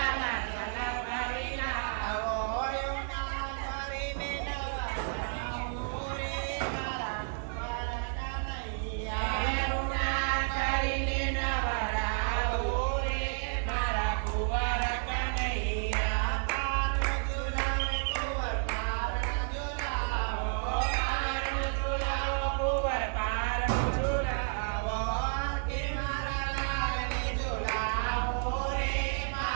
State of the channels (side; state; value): left; silent; 57 dB below the other